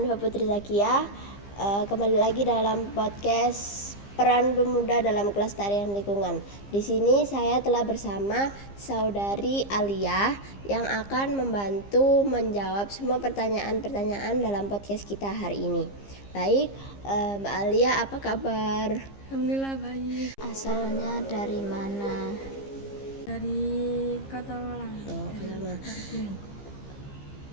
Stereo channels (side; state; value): right; late; 15 ms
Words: Putri Zakia. Kembali lagi dalam podcast Peran Pemuda dalam Kelestarian Lingkungan. Di sini saya telah bersama saudari Alia yang akan membantu menjawab semua pertanyaan-pertanyaan dalam podcast kita hari ini. Baik, Mbak Alia, apa kabar? Alhamdulillah baik. Asalnya dari mana? Dari Kota Malang.